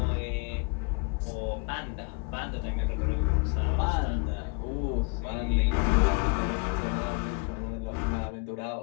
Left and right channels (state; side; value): quieter; right; 31.9 dB